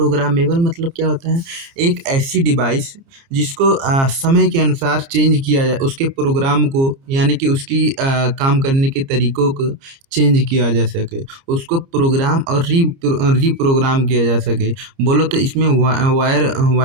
मतलब क्या होता है? एक ऐसी डिवाइस जिसको समय के अनुसार चेंज किया जाए, उसके प्रोग्राम को यानी कि उसकी काम करने के तरीकों को चेंज किया जा सके, उसको प्रोग्राम और रीप्रोग्राम किया जा सके। बोलो तो इसमें वायर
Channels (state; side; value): late; left; 30 ms